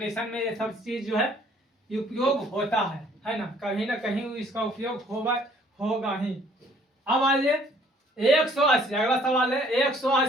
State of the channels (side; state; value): both; normal; correlation 0.59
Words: में ये सब चीज जो है उपयोग होता है ना, कहीं ना कहीं इसका उपयोग होगा ही। अब आइए 180, अगला सवाल है